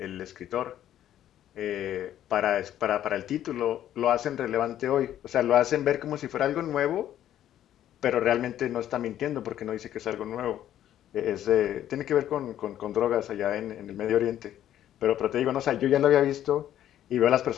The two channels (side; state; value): right; quieter; 11.6 dB